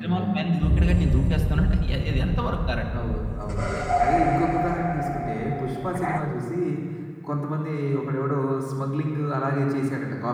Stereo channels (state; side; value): identical; both; correlation 1.00